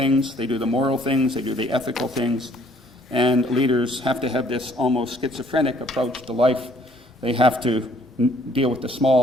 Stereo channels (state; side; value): normal; both; correlation 0.61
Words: they do the moral things, they do the ethical things, and leaders have to have this almost schizophrenic approach to life. They have to deal with the